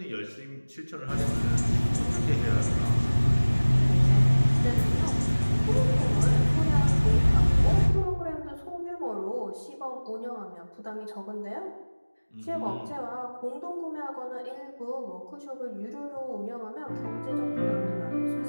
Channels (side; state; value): both; inverted; correlation -1.00